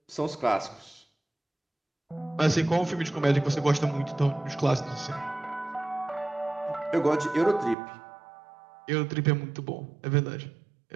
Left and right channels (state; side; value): drops out; left; at 7.8 s